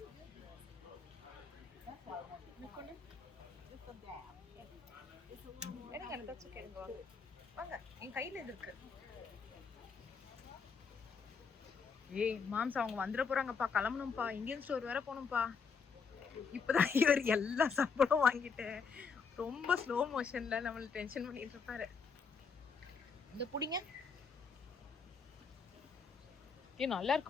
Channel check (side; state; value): right; quieter; 5.6 dB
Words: எடுங்க, தட்ஸ் ஓகே. வாங்க, என் கையில இது இருக்கு. ஏய் மாம்ஸ், அவங்க வந்துட போறாங்கப்பா, கிளம்பணும்ப்பா. இந்தியன் ஸ்டோர் வேற போகணும்ப்பா. இப்பதான் இவர் எல்லா சாப்பாடும் வாங்கிட்டு ரொம்ப ஸ்லோ மோஷன்ல நம்மள டென்ஷன் பண்ணிட்டு இருப்பாரு. இந்த புடிங்க. நல்லா